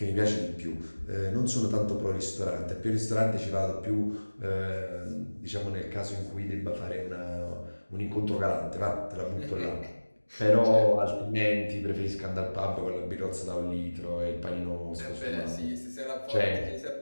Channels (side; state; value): both; inverted; correlation -1.00